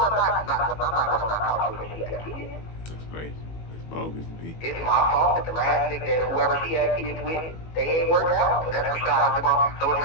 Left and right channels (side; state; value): right; late; 18 ms